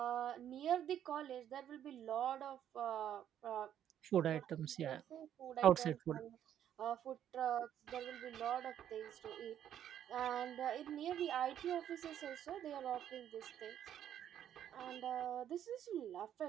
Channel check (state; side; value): quieter; left; 10.3 dB